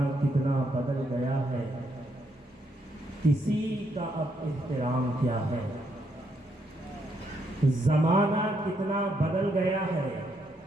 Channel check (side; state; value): both; normal; correlation 0.76